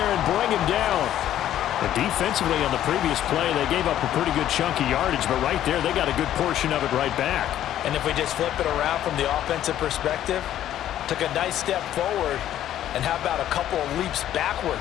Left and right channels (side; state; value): right; quieter; 11.8 dB